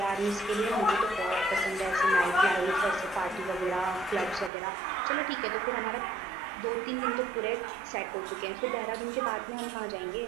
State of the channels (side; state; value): left; drops out; at 4.5 s